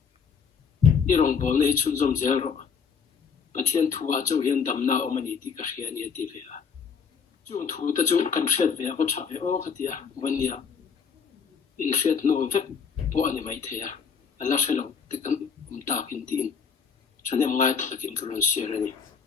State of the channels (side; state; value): right; quieter; 6.3 dB